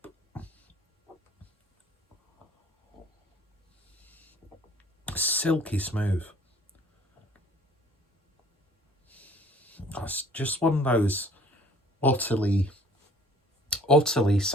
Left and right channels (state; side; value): normal; both; correlation 0.54